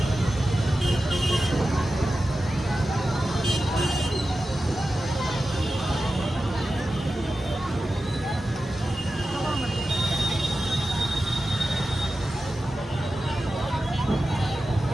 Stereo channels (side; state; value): both; normal; correlation 0.93